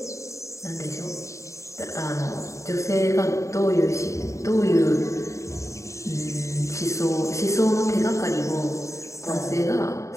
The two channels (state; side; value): late; right; 0.15 ms